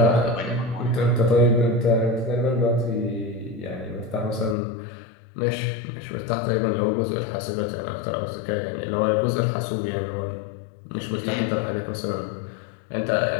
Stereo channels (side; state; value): right; drops out; at 4.5 s